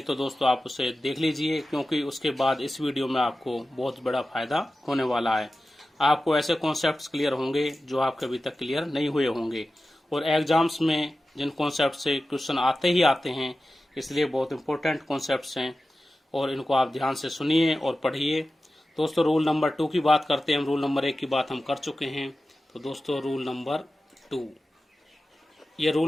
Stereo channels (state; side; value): normal; both; correlation 0.94